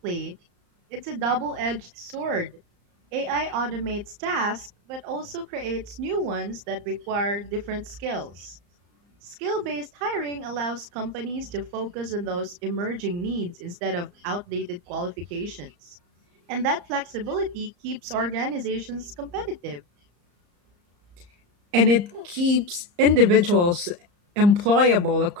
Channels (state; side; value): late; left; 34 ms